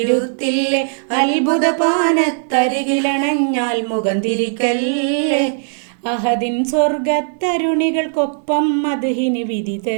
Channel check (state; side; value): silent; left; 60 dB below the other